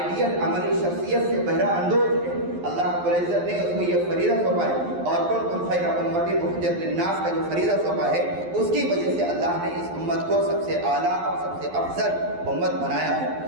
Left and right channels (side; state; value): left; late; 11 ms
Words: عملی شخصیت سے بہرہ اندوز ہے۔ اللہ رب العزت نے اس کو یہ فریضہ سونپا ہے، اور کنتم خیر امۃ اخرجت للناس کا جو فریضہ سونپا ہے اس کی وجہ سے اللہ نے اس امت کو سب سے اعلیٰ اور سب سے افضل امت بنایا ہے۔